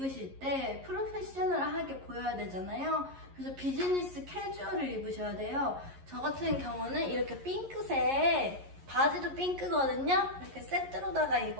때 프로페셔널하게 보여야 되잖아요. 그래서 비즈니스 캐주얼을 입으셔야 돼요. 저 같은 경우는 이렇게 핑크색 바지도 핑크거든요. 이렇게 세트로다가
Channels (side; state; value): left; late; 11 ms